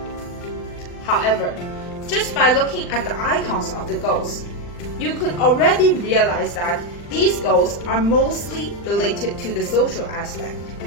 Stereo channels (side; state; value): right; late; 40 ms